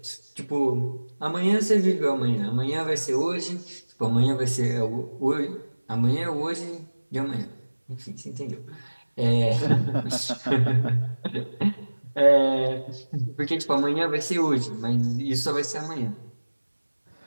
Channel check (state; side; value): inverted; both; correlation -1.00